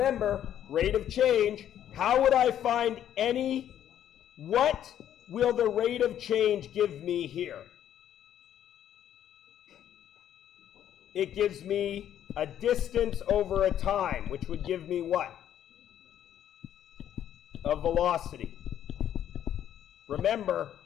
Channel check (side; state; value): right; quieter; 10.6 dB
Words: rate of change. How would I find what will the rate of change give me here? It gives me a distance over a time, which would give me what? A velocity. Remember,